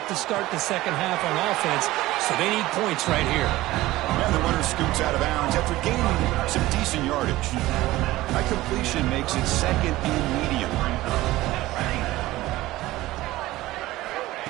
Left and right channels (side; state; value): left; quieter; 17.5 dB